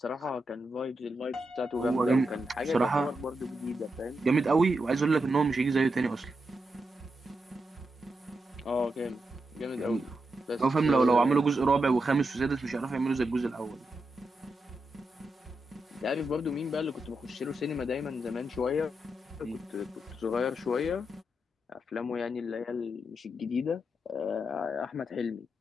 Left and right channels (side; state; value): both; normal; correlation 0.86